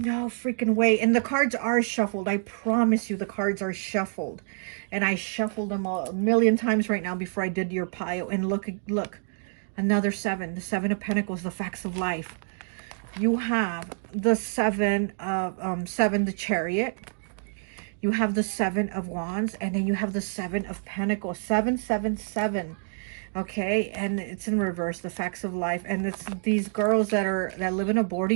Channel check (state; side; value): silent; left; digital silence